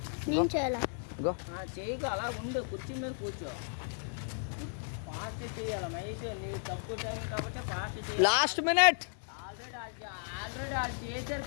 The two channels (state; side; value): silent; right; 55 dB below the other